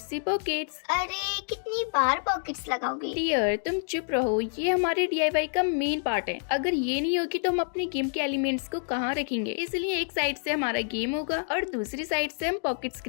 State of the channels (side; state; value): right; silent; 59 dB below the other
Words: पॉकेट्स। अरे कितनी बार पॉकेट्स लगाओगे? डियर तुम चुप रहो, ये हमारे DIY का मेन पार्ट है। अगर ये नहीं होगी तो हम अपने गेम के एलिमेंट्स को कहाँ रखेंगे? इसलिए एक साइड से हमारा गेम होगा और दूसरी साइड से हम पॉकेट्स